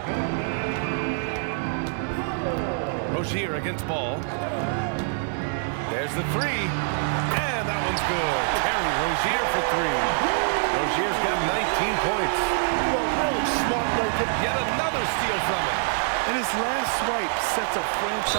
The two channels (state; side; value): silent; left; digital silence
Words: Rozier against Ball. There's the 3. And that one's good. Terry Rozier for 3. Rozier's got 19 points. Well, really smart right there. Yet another steal from him. And his last swipe sets a